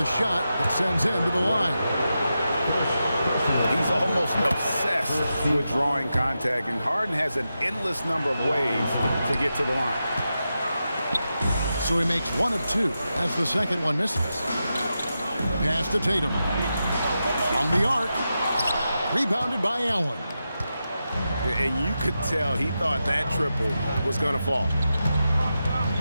shot that sends him to the line. He's almost obsessed with drawing contact, and Harden has an endless number of ways to get to the line. So he makes one of two as the second one misses. Pass to Tatum. From the arc. Rebounded by Allen. And you could tell he thought that triple was going to fall.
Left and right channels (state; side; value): inverted; both; correlation -0.89